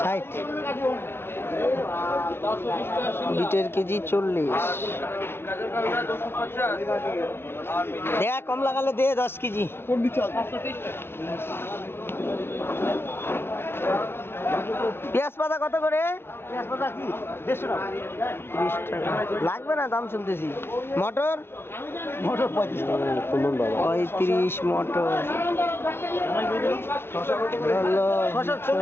60। বিটের কেজি 40। দেয়া কম লাগালে দে 10 কেজি। পেঁয়াজ পাতা কত করে? পেঁয়াজ পাতা কি 150 টাকা। 30 টাকা লাগবে না, দাম শুনতেছি। মটর, মটর 35 টাকা। 35 মটর। শসা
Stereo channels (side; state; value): right; late; 0.11 ms